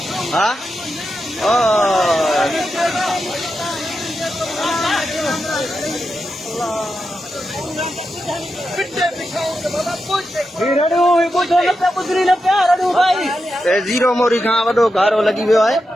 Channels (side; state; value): both; normal; correlation 0.88